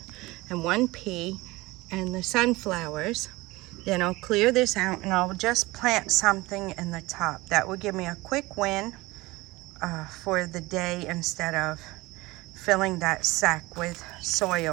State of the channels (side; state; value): left; quieter; 20.9 dB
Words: and one pea and the sunflowers. Then I'll clear this out and I'll just plant something in the top. That will give me a quick win for the day instead of filling that sack with